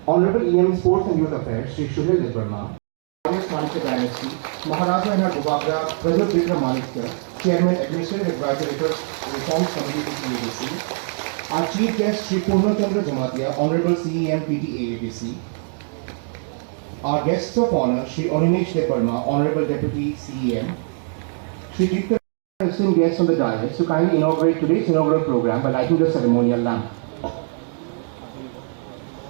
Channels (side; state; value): left; silent; 62 dB below the other